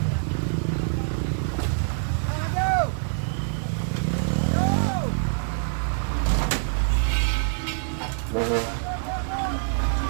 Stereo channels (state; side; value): silent; left; 61 dB below the other